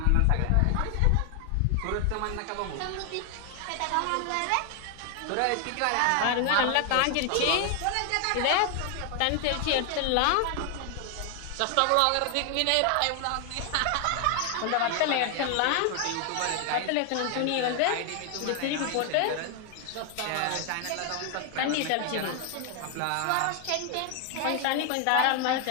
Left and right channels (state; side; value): different; both; correlation 0.00